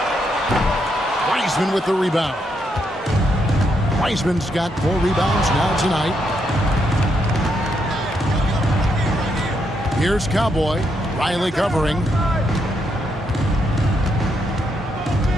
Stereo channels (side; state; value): both; normal; correlation 0.78